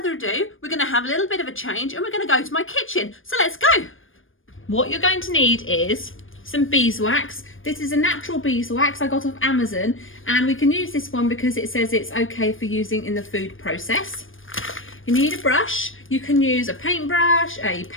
ado, we're going to have a little bit of a change and we're going to go to my kitchen. So let's go. What you're going to need is some beeswax. This is a natural beeswax I got off Amazon, and we can use this one because it says it's okay for using in the food process. You need a brush. You can use a paintbrush, a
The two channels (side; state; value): right; late; 0.59 ms